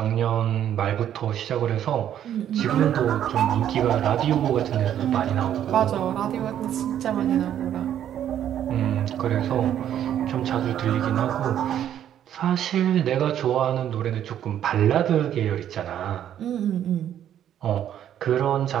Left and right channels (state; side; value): quieter; left; 10.5 dB